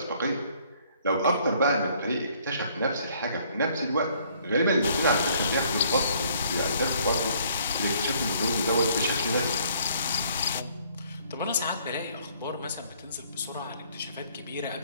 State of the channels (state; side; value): inverted; both; correlation -0.62